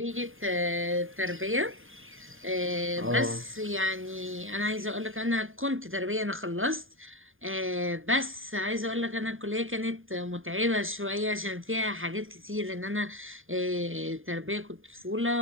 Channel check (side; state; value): left; late; 0.59 ms